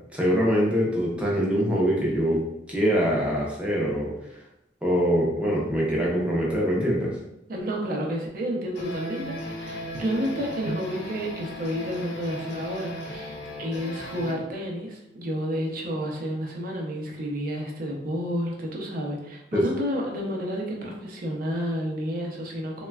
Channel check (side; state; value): both; normal; correlation 0.65